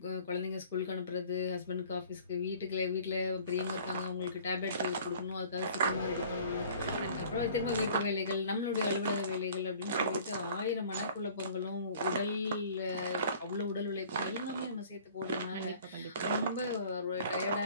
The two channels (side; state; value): both; inverted; correlation -0.50